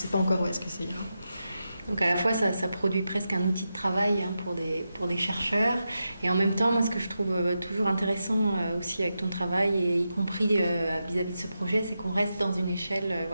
pas encore où est-ce que ça ira. Donc à la fois ça produit presque un outil de travail pour des chercheurs, et en même temps moi ce que je trouve toujours intéressant aussi avec ton travail, et y compris vis-à-vis de ce projet, c'est qu'on reste dans une échelle,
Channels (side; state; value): both; inverted; correlation -0.88